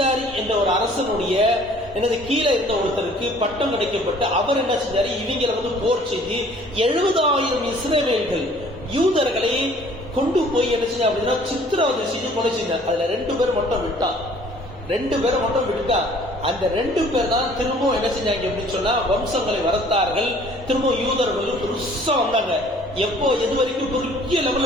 என்ற ஒரு அரசனுடைய கீழே இருந்த ஒருத்தருக்கு பட்டம் கிடைக்கப்பட்டு அவர் என்ன செஞ்சாரு, இவங்களை வந்து போர் செய்து 70,000 இஸ்ரவேல்கள் யூதர்களை கொண்டு போய் என்ன செஞ்சா அப்படின்னா சித்திரவதை செய்து கொலை செஞ்சார். அதுல 2 பேர் மட்டும் விட்டான். அந்த 2 பேர் தான் திரும்ப என்ன செஞ்சாங்க அப்படின்னு சொன்னா வம்சங்களை வளர்த்தார்கள். திரும்ப யூதர்கள் பெருசா வந்தாங்க. எப்போ எது வரைக்கும் பெரிய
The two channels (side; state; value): both; normal; correlation 0.54